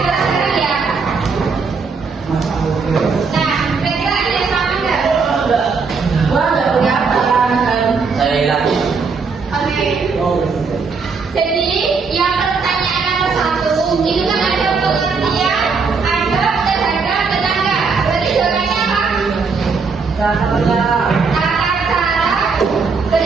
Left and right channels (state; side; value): quieter; left; 4.9 dB